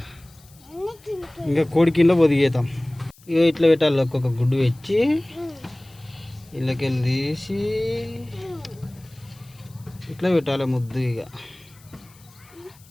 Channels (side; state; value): left; noise; hiss, 27 dB below the sound